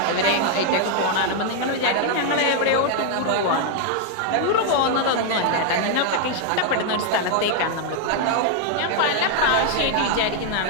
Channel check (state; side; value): different; both; correlation 0.00